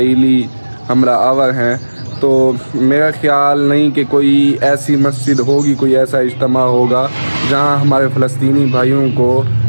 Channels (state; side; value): inverted; both; correlation -1.00